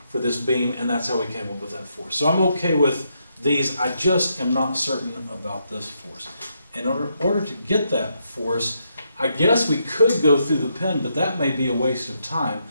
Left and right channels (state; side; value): inverted; both; correlation -0.79